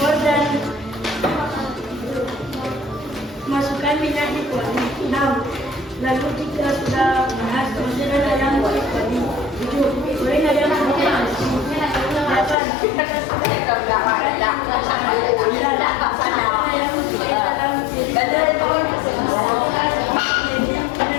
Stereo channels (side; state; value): right; drops out; at 12.6 s